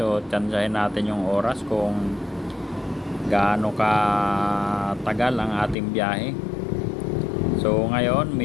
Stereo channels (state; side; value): drops out; right; at 5.8 s